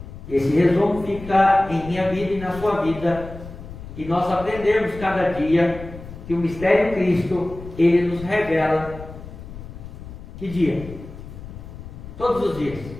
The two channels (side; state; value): left; noise; rumble, 13 dB below the sound